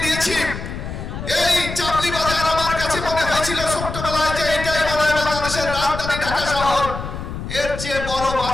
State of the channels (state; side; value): noise; left; rumble, 7 dB below the sound